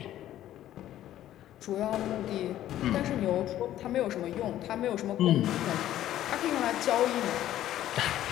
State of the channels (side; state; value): right; quieter; 12.7 dB